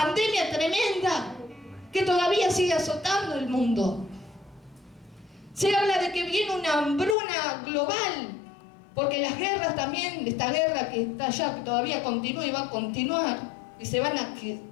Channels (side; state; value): right; drops out; at 7.2 s